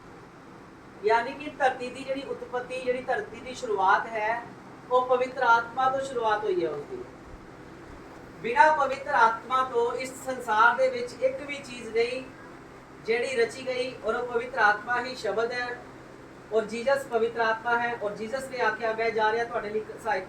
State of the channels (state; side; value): identical; both; correlation 1.00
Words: ਯਾਨੀ ਕਿ ਧਰਤੀ ਦੀ ਜਿਹੜੀ ਉਤਪਤੀ, ਜਿਹੜੀ ਧਰਤੀ ਦੀ ਸ਼ੁਰੂਆਤ ਹੈ, ਉਹ ਪਵਿੱਤਰ ਆਤਮਾ ਤੋਂ ਸ਼ੁਰੂਆਤ ਹੋਈ ਹੈ ਉਸਦੀ। ਬਿਨਾਂ ਪਵਿੱਤਰ ਆਤਮਾ ਤੋਂ ਇਸ ਸੰਸਾਰ ਦੇ ਵਿੱਚ ਇੱਕ ਵੀ ਚੀਜ਼ ਨਹੀਂ ਜਿਹੜੀ ਰਚੀ ਗਈ, ਔਰ ਉਹ ਪਵਿੱਤਰ ਆਤਮਾ ਹੀ ਸ਼ਬਦ ਹੈ, ਔਰ ਜੀਸਸ ਪਵਿੱਤਰ आत्मा है। और जीसस ने आख्या मैं जा रहा ਤੁਹਾਡੇ ਲਈ ਸਹਾਇਕ